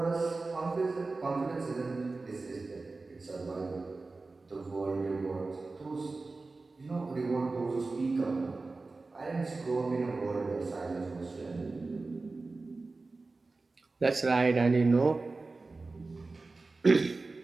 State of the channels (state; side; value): quieter; left; 3.6 dB